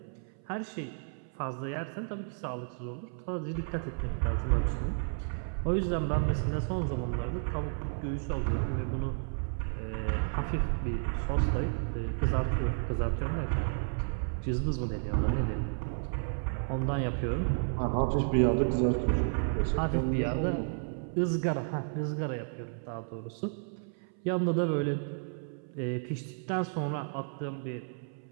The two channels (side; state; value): left; silent; 56 dB below the other